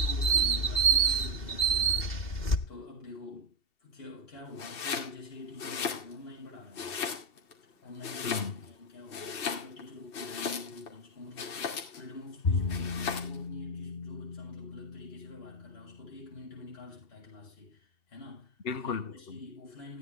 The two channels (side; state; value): right; late; 2.7 ms